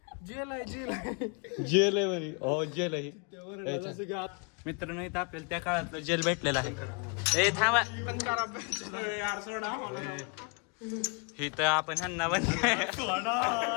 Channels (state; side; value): quieter; right; 34.3 dB